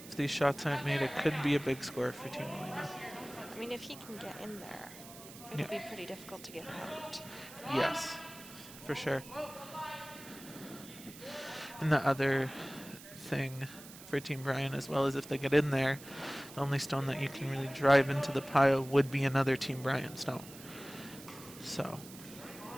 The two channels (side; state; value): right; noise; hiss, 16 dB below the sound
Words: these shots aren't made, it could be a big score for Team Mulima. I mean, if he can get in there, it'll be pretty difficult to get out. Yes, for sure. And the other thing for Team Bryant as well is if they get in there, the only stone that you can really drive into the pile would be another Team Bryant stone. So.